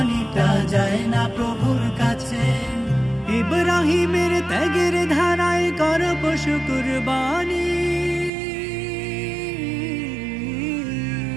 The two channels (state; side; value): drops out; left; at 8.3 s